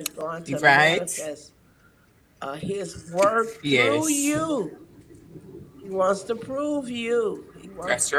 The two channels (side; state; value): both; identical; correlation 1.00